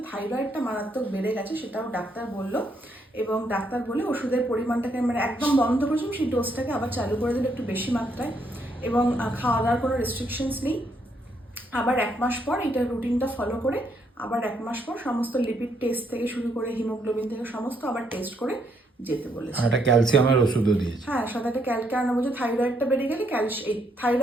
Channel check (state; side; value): normal; both; correlation 0.74